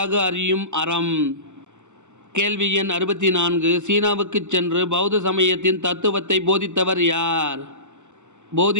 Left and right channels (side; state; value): left; late; 0.84 ms